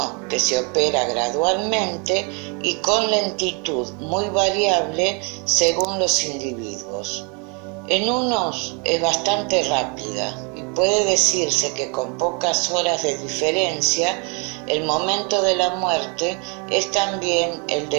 que se opera gradualmente y con lentitud muy variable según los individuos. En unos es bastante rápida y puede decirse que con pocas horas de diferencia el momento de la muerte es también el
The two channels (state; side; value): quieter; left; 34.4 dB